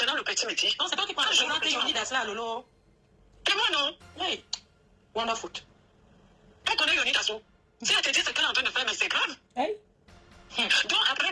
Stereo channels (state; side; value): identical; both; correlation 1.00